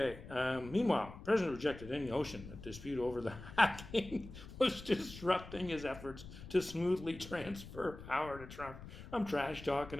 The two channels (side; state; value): left; noise; rumble, 14 dB below the sound